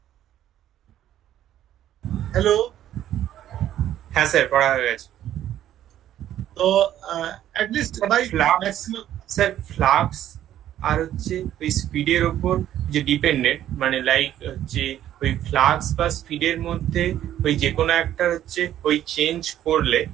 Hello? হ্যাঁ sir, পড়া হয়ে গেছে। তো at least by maximum, sir flux আর হচ্ছে ওই স্পিডের ওপর যে ডিপেন্ডেন্ট, মানে লাইক হচ্ছে ওই ফ্লাক্স বা স্পিডের মধ্যে ওই যে কোনো একটা হচ্ছে ওই চেঞ্জ করলে,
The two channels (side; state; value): left; quieter; 11.8 dB